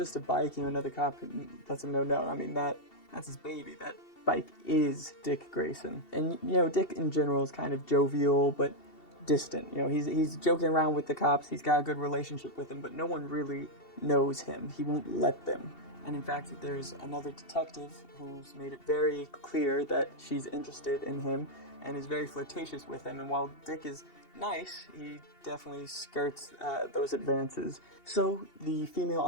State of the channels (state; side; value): late; right; 2.7 ms